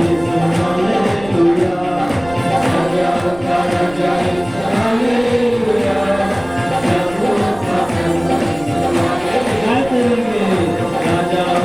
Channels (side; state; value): right; noise; rumble, 19 dB below the sound